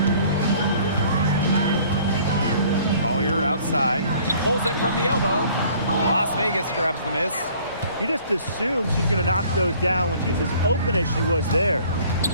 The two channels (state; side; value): inverted; both; correlation -0.54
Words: Collier outside, pulls it from the elbow. Las Vegas grabs the miss. You just assume she's going to knock those down when she's as open as she was there.